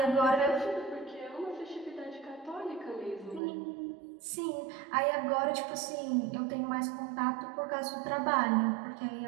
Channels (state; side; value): drops out; left; at 3.4 s